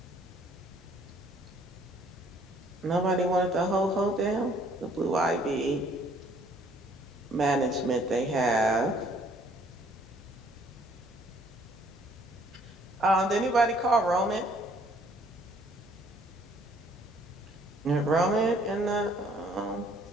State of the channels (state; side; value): normal; both; correlation 0.61